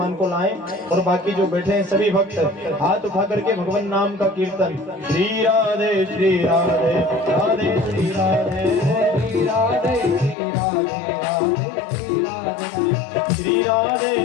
को लाएं। और बाकी जो बैठे हैं सभी भक्त हाथ उठा करके भगवान नाम का कीर्तन। श्री राधे श्री राधे राधे श्री राधे श्री राधे श्री राधे राधे श्री राधे। श्री राधे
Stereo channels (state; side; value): drops out; right; at 10.4 s